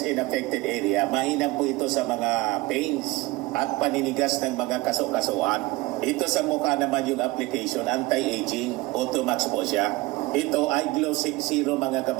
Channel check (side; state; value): left; quieter; 21.2 dB